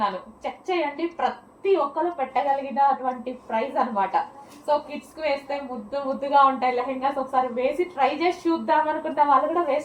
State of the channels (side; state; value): both; identical; correlation 1.00